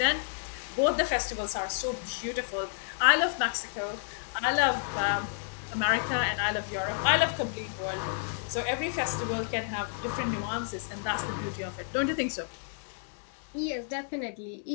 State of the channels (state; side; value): silent; right; digital silence